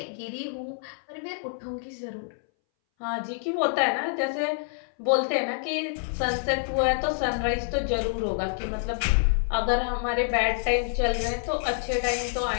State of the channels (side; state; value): right; silent; 60 dB below the other